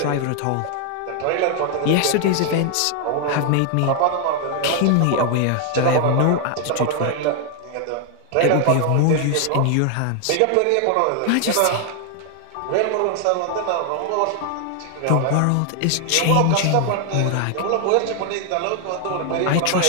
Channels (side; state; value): both; different; correlation 0.00